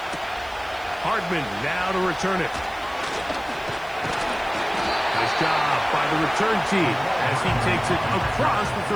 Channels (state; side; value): noise; right; hiss, 26 dB below the sound